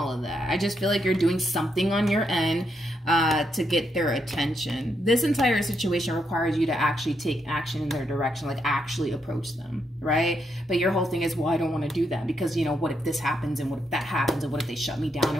of that. I just feel like you're doing something on your end to get their attention. This entire situation requires you to actually take action in their direction, like actually approach them, right? But your whole thing is, well, I don't want to do that because, you know, what if this happens, and what if that happens, and what if they shut me down,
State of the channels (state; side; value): normal; both; correlation 0.79